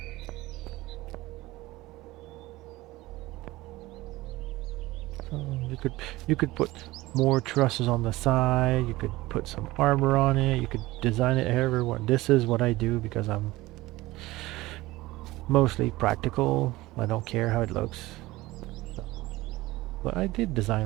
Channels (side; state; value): left; quieter; 19.0 dB